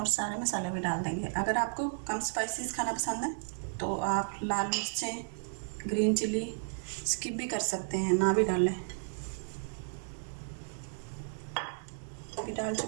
सारे मसाले भी डाल देंगे। अगर आपको कम स्पाइसेस खाना पसंद है तो आप लाल मिर्चें, ग्रीन चिली स्किप भी कर सकते हैं, ना भी डालें। अभी डाल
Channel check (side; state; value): left; silent; 55 dB below the other